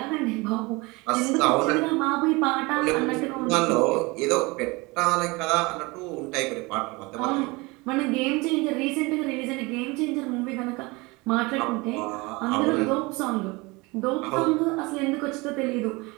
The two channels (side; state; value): left; quieter; 24.6 dB